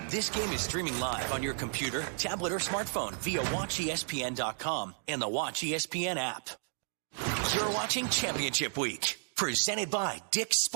This game is streaming live on your computer, tablet, or smartphone via WatchESPN.com and the Watch ESPN app. You're watching Championship Week, presented by Dick's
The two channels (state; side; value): silent; left; digital silence